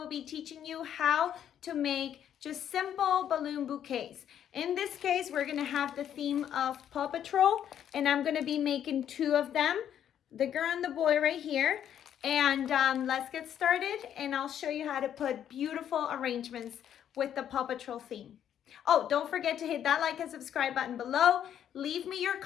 be teaching you how to make just simple balloon bouquets. In this case, we're gonna have the theme of Paw Patrol, and I'm gonna be making two of them, the girl and the boy right here. And let's get started, and I'll show you how to put beautiful arrangements with the Paw Patrol theme. Oh, don't forget to hit that like and subscribe button below. Leave me your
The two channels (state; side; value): quieter; right; 9.8 dB